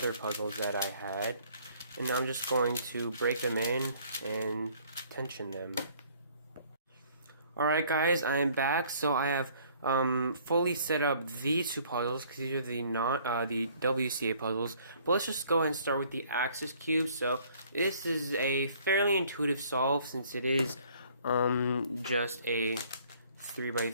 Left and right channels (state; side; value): inverted; both; correlation -0.59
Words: puzzles that I had. And now I'm just going to break them in and tension them. Alright guys, I am back. So I have fully set up these two puzzles because these are the WCA puzzles. But let's just go ahead and start with the axis cube. So this is a fairly intuitive solve since it is just a